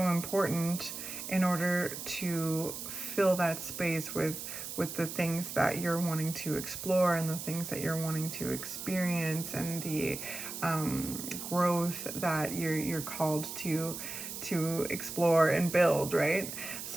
important in order to fill that space with the things that you're wanting to explore, and the things that you're wanting to experience, and the growth that you're called to explore and build, right?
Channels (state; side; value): noise; right; hiss, 8 dB below the sound